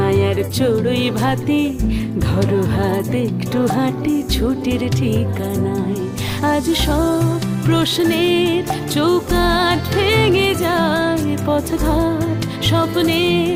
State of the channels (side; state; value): both; identical; correlation 1.00